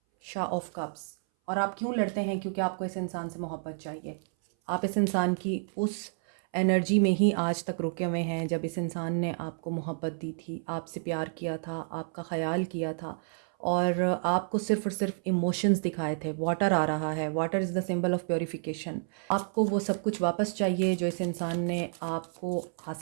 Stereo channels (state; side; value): silent; left; 58 dB below the other